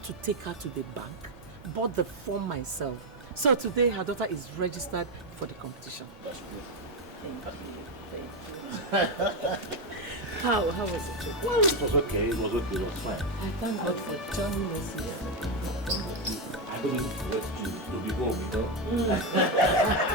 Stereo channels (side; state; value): both; normal; correlation 0.07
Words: to take her to the bank, bought the form myself. So today her daughter is registered for the competition. That's good. Thank you. How was it? Well, it was okay. It was fine. I thank God for joining us here. I I don't want to be home, you know.